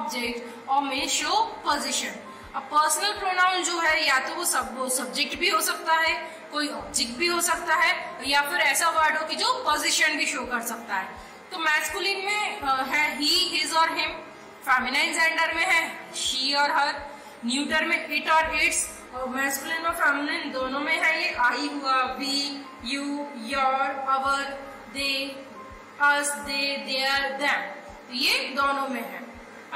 or may show position. अब personal pronoun जो है या तो वो सब्जेक्ट भी हो सकता है, कोई ऑब्जेक्ट भी हो सकता है, या फिर ऐसा वर्ड हो कि जो पोजीशन भी शो कर सकता है। तो मैस्कुलिन में है ही, हिज और हिम, फेमिनाइन जेंडर में है शी और हर, न्यूटर में इट और इट्स, और मैस्कुलिन और फेमिनाइन दोनों में है ये आई हुआ, we, you, your, our, they, us, they, their, them, तो ये दोनों में है।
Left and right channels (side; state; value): both; identical; correlation 1.00